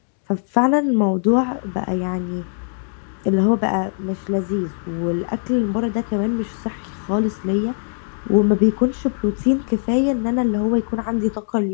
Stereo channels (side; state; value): right; silent; digital silence